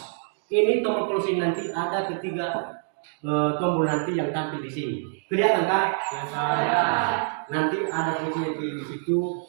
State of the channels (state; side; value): silent; left; digital silence